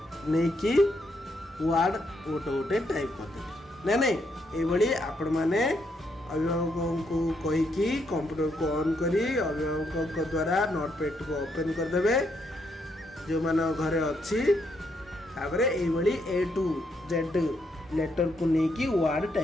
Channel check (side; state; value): both; normal; correlation 0.77